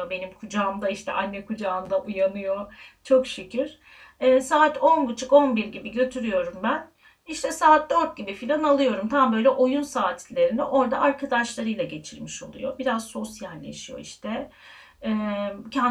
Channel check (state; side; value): identical; both; correlation 1.00